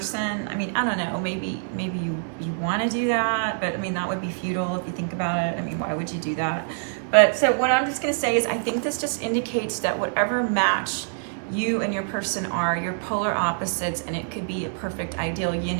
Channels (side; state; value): left; silent; digital silence